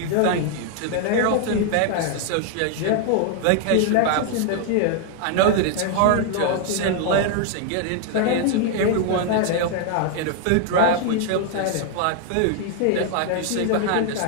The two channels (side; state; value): both; different; correlation 0.00